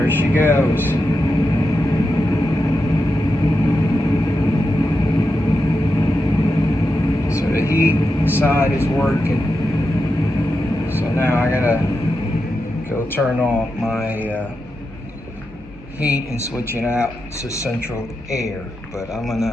she goes. So the heat side is working. So now I gotta go turn off my heat and switch it out to central air. But I'm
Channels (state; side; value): normal; both; correlation 0.88